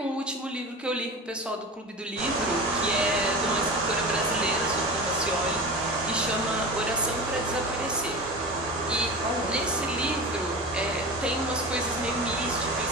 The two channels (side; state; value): both; normal; correlation 0.30